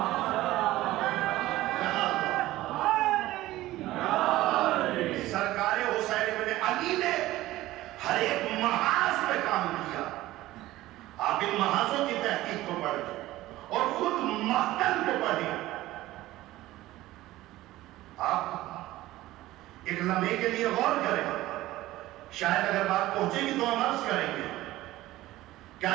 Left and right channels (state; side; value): quieter; left; 16.5 dB